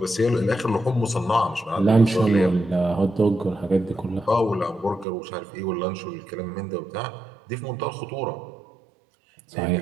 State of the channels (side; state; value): left; drops out; at 5.1 s